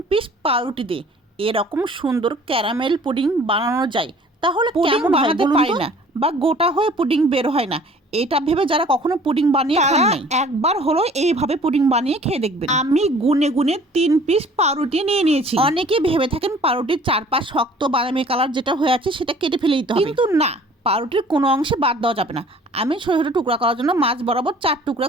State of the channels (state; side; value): normal; both; correlation 0.51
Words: পিস পাউরুটি দিয়ে এরকম সুন্দর ক্যারামেল পুডিং বানানো যায়, তাহলে কেমন বানাতে পারি না বা গোটা হয়ে পুডিং বের হয় না, এটা ভেবে যারা কখনো পুডিং বানিয়ে খান নাই, একবার হলো এইভাবে পুডিং বানিয়ে খেয়ে দেখবেন। আমি গুনে গুনে 3 পিস পাউরুটি নিয়ে নিয়েছি। অনেকে ভেবে থাকেন পাউরুটির চারপাশ শক্ত বাদামি কালার যেটা হয়ে আছে সেটা কেটে ফেলে দিতে হবে, কিন্তু না, পাউরুটির কোনো অংশে বাদ দেওয়া যাবে না। আমি ছোট ছোট টুকরা করার জন্য মাছ বরাবর 4 টুকরা